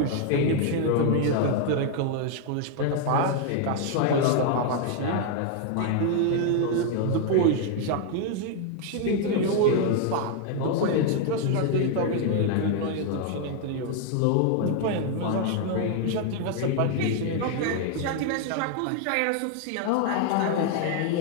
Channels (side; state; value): both; different; correlation 0.00